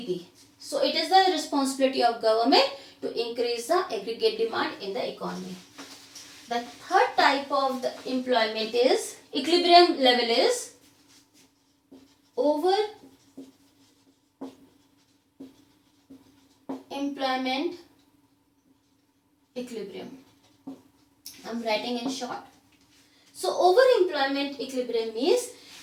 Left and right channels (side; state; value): both; identical; correlation 1.00